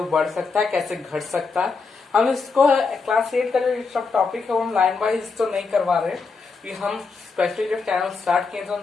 बढ़ सकता है, कैसे घट सकता है। हम इसको क्लास 8 का जो सब टॉपिक है वो हम लाइन वाइज तो नहीं करवा रहे कि हम स्पेशली जब चैनल स्टार्ट किए तो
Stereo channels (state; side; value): quieter; right; 4.6 dB